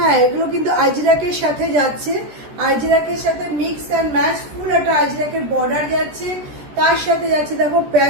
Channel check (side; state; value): left; late; 13 ms